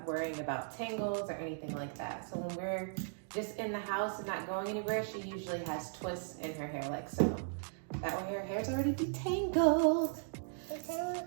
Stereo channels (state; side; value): silent; left; digital silence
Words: worrying about tangles or anything like that. So when we're just in the house and not going anywhere, she usually has twists in her hair like so. That way her hair's already detangled.